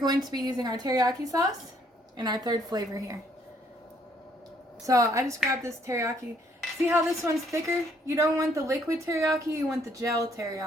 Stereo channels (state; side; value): normal; both; correlation 0.67